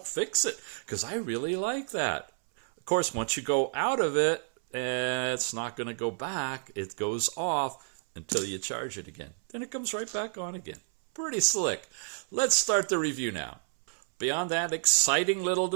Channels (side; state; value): left; silent; 58 dB below the other